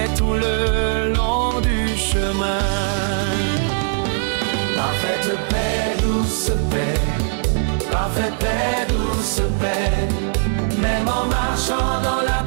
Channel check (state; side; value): silent; left; 66 dB below the other